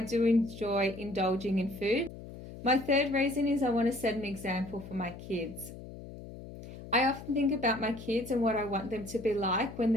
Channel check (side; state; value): left; noise; hum, 13 dB below the sound